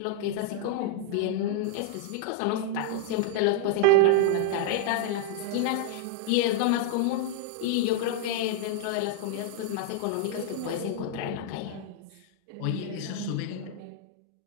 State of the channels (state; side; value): different; both; correlation 0.00